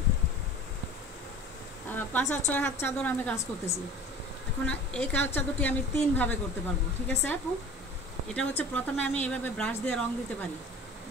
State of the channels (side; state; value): both; normal; correlation 0.41